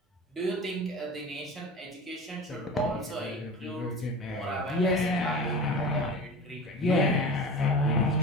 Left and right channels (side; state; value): both; normal; correlation 0.33